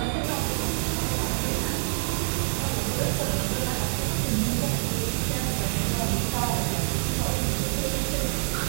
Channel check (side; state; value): left; silent; digital silence